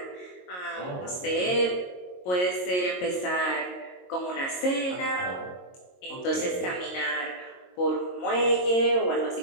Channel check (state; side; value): late; right; 22 ms